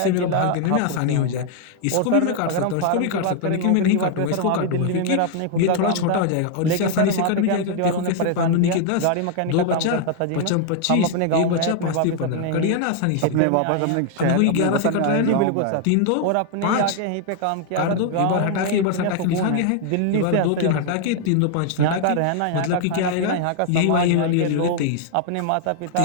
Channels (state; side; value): different; both; correlation 0.00